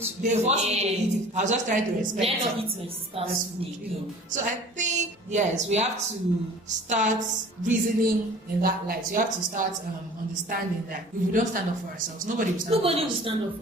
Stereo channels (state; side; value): normal; both; correlation 0.46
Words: They forced me to eat it. I was just trying to respect Let not eat my sister's food. So I think yes, we have to start reasoning in that light. You have to start understanding that if we don't stand up for ourselves, nobody will stand up. Nobody will stand up